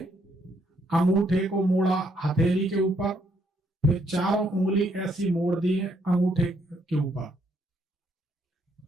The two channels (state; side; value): normal; both; correlation 0.72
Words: अंगूठे को मोड़ा हथेली के ऊपर, फिर 4 उंगली ऐसी मोड़ दी है अंगूठे के ऊपर,